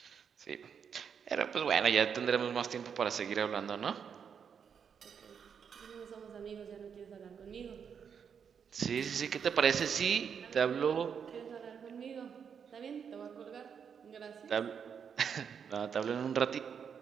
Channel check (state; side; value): quieter; left; 7.1 dB